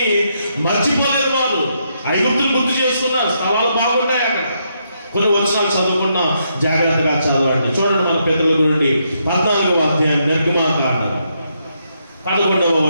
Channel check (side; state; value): both; inverted; correlation -0.78